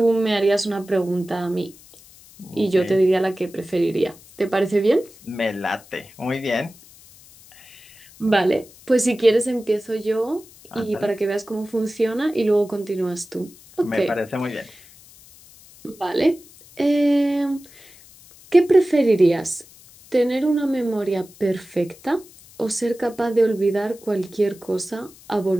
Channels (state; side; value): noise; left; hiss, 23 dB below the sound